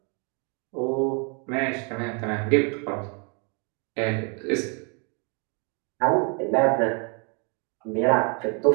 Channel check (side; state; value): left; quieter; 36.2 dB